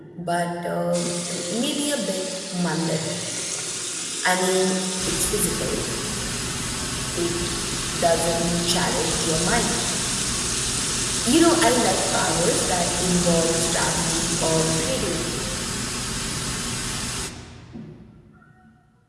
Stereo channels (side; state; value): both; identical; correlation 1.00